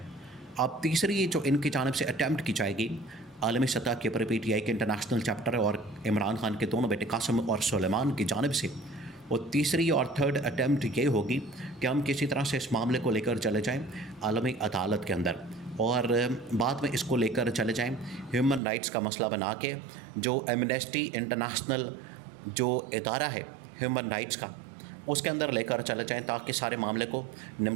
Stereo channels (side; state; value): left; drops out; at 18.6 s